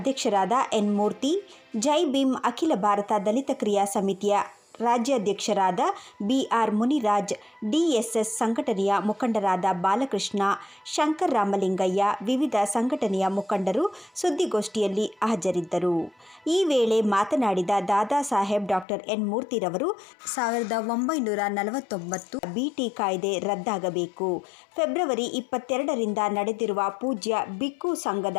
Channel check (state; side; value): drops out; right; at 18.9 s